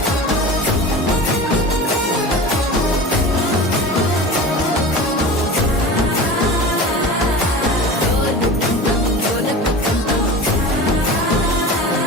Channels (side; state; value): both; normal; correlation 0.33